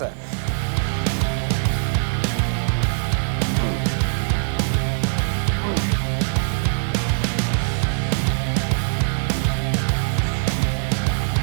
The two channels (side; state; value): left; silent; 64 dB below the other